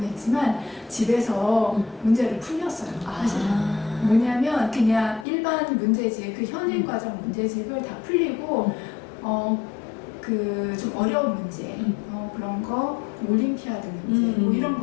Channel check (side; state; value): right; drops out; at 5.2 s